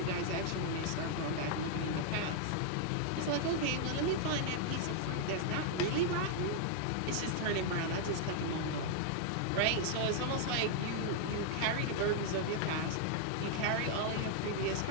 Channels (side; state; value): both; different; correlation 0.00